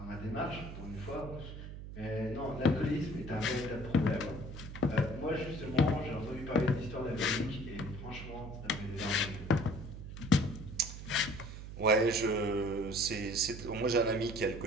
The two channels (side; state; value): right; noise; hum, 10 dB below the sound